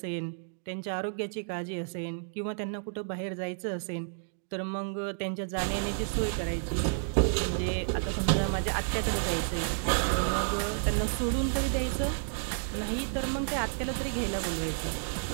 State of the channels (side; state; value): left; silent; digital silence